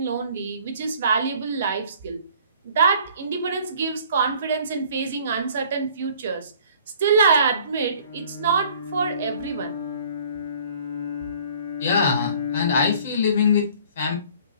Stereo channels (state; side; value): inverted; both; correlation -0.54